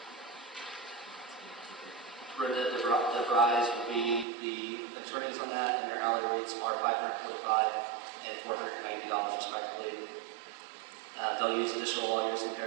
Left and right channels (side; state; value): left; drops out; at 4.2 s